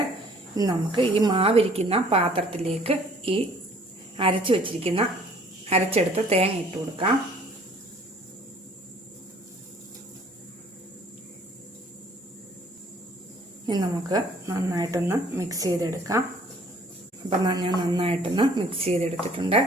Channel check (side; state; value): both; normal; correlation 0.56